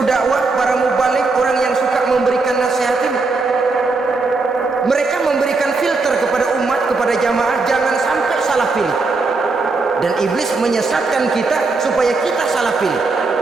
dakwah, para mubalik, orang yang suka memberikan nasihat ini, mereka memberikan filter kepada umat, kepada jamaah, jangan sampai salah pilih. Dan iblis menyesatkan kita supaya kita salah pilih.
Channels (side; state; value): left; quieter; 3.8 dB